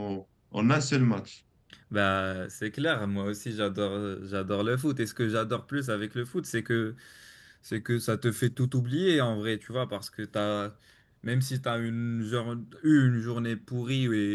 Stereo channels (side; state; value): both; identical; correlation 1.00